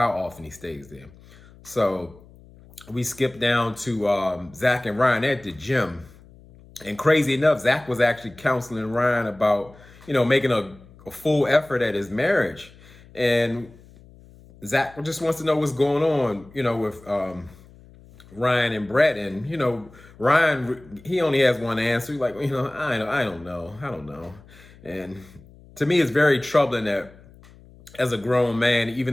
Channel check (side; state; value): left; noise; hum, 23 dB below the sound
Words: often he stays there. So we skip down to Zach and Ryan at the gym. And crazy enough, Zach was actually counseling Ryan about, making a full effort at his marriage. And Zach just wants to know what's going on, with Ryan and Brett. And, Ryan, he only has one answer. He's like, I don't know. And to me, it's very troubling that as a grown man, even